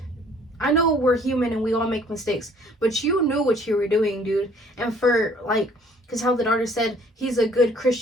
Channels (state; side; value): normal; both; correlation 0.58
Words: I know we're human and we all make mistakes, but you knew what you were doing, dude. And for, like, because how the daughter said he's a good